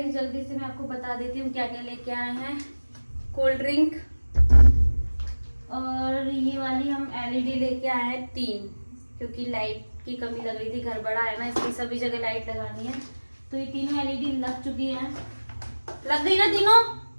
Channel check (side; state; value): both; inverted; correlation -1.00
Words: जल्दी से मैं आपको बता देती हूँ क्या क्या लेके आए हैं। कोल्ड ड्रिंक और ये वाली हम एलईडी लेके आए हैं 3, क्योंकि लाइट की कमी लग रही थी, घर बड़ा है ना इसलिए सभी जगह लाइट लगानी है। तो ये तीनों एलईडी लग चुकी हैं। लग गई ना तीनों?